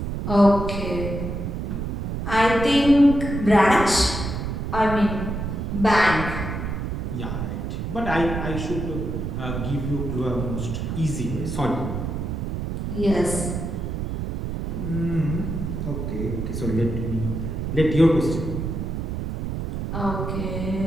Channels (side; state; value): right; noise; rumble, 3 dB below the sound